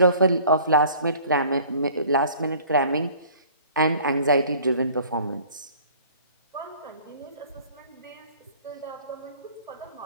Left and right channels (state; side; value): inverted; both; correlation -0.51